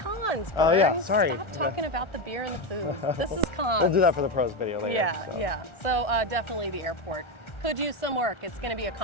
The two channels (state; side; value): late; right; 1.4 ms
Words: pro. cons, Oh, yeah, Bern. sorry. Stop talking about the beer and the food. This is cons. We'll do that for the pros video later. Yeah, so. yeah. So definitely the airport. Could use some work. It's going to be a